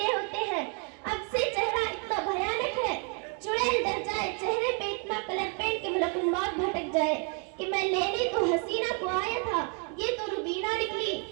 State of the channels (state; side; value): quieter; left; 39.1 dB